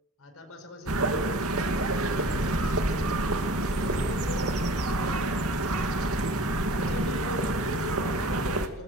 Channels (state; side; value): normal; both; correlation 0.43